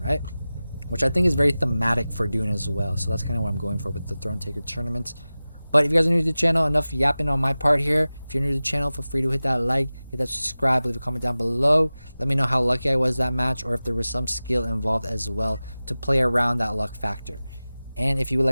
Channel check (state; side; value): inverted; both; correlation -0.97